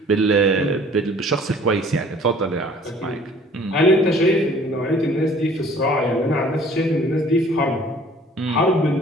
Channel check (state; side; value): normal; both; correlation 0.53